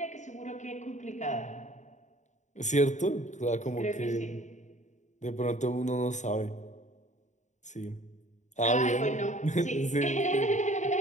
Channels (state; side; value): late; right; 0.35 ms